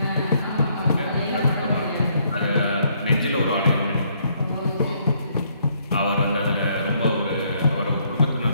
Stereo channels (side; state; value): both; inverted; correlation -0.69